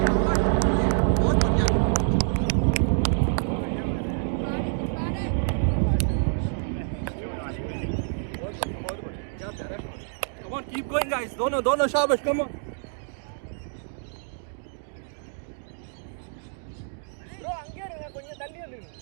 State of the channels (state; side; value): silent; left; 60 dB below the other